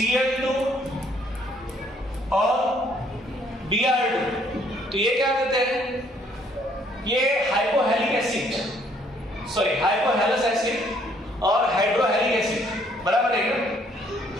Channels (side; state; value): both; normal; correlation 0.65